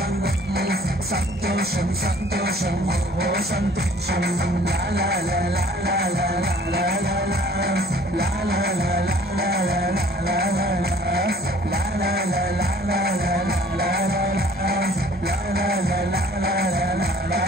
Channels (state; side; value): normal; both; correlation 0.54